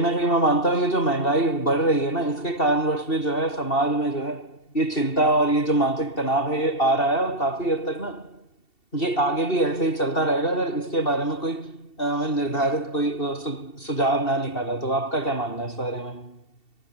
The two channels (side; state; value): right; late; 2.7 ms